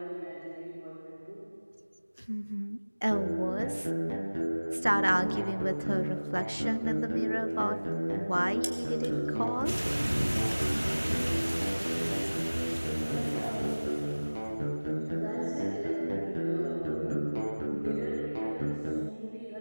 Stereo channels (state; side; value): inverted; both; correlation -1.00